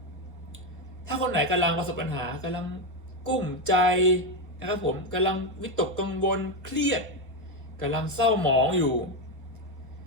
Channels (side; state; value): both; normal; correlation 0.09